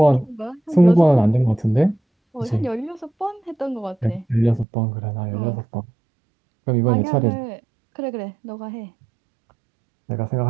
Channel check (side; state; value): left; drops out; at 4.7 s